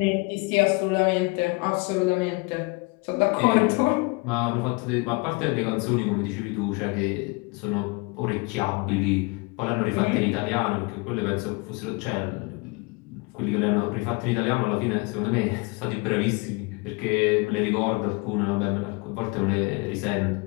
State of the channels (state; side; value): quieter; right; 28.3 dB